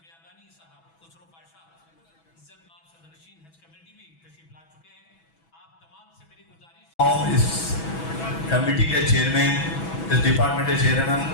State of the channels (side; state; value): right; late; 6.1 ms